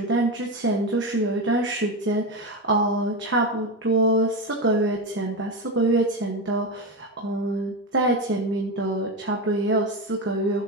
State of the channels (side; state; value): both; normal; correlation 0.16